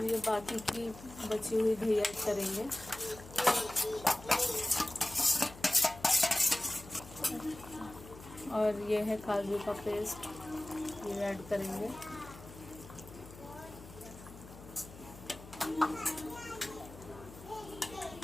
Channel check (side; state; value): left; noise; hum, 16 dB below the sound